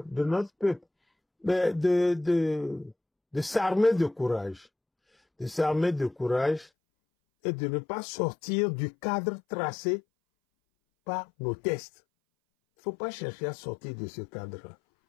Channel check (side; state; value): right; drops out; at 6.7 s